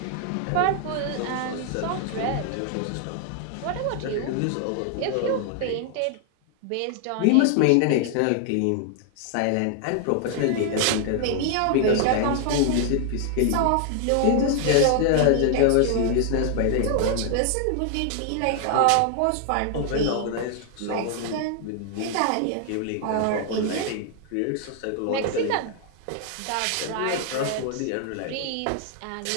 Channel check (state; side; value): different; both; correlation 0.00